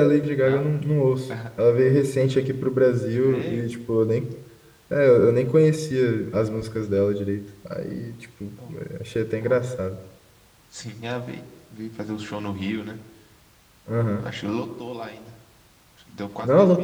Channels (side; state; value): both; identical; correlation 1.00